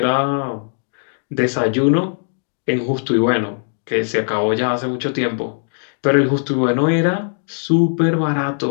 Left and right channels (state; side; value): silent; right; digital silence